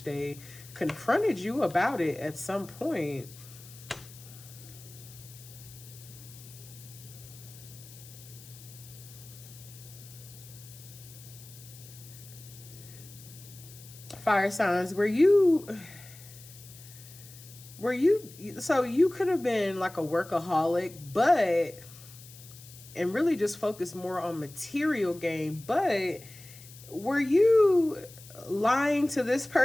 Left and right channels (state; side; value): noise; left; hiss, 19 dB below the sound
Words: they confronted you about it at some point. Fire signs, so you could have been like a workaholic, but, and really just focus more on material gain, but were you lying to this